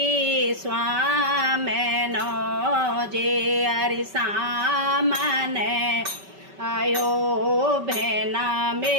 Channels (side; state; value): left; late; 5.2 ms